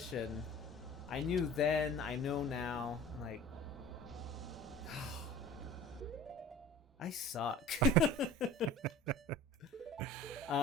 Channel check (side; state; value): both; normal; correlation 0.42